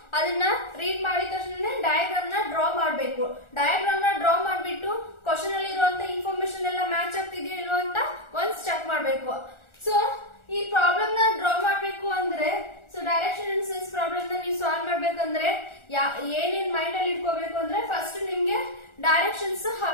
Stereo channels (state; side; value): late; right; 1.4 ms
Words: ಅದನ್ನ ರೀಡ್ ಮಾಡಿದ ತಕ್ಷಣ ಡಯಾಗ್ರಾಮ್ ನ ಡ್ರಾ ಮಾಡಬೇಕು. ಡಯಾಗ್ರಾಮ್ ನ ಡ್ರಾ ಮಾಡಿಬಿಟ್ಟು ಕ್ವಶನ್ ಅಲ್ಲಿ ಇರುವಂತ ಇನ್ಫಾರ್ಮೇಶನ್ ಎಲ್ಲ ಮ್ಯಾಚ್ ಆಗ್ತಿದೆಯೋ ಇಲ್ವೋ ಅಂತ ಒನ್ಸ್ ಚೆಕ್ ಮಾಡಬೇಕು. ಸೊ ಈ ಪ್ರಾಬ್ಲಮ್ ನ ಡ್ರಾ ಮಾಡಬೇಕು ಅಂದ್ರೆ so direction and sense problem ನ ನೀವು ಸಾಲ್ವ್ ಮಾಡ್ಬೇಕಂದ್ರೆ ಏನೇನ್ ಮೈಂಡ್ ಅಲ್ಲಿ ಇಟ್ಕೋಬೇಕು ಅಂದ್ರೆ ಫಸ್ಟ್ ನಿಮ್ಗೆ ಡೈರೆಕ್ಷನ್ಸ್